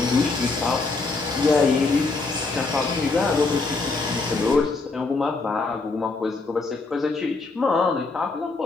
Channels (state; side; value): quieter; right; 3.8 dB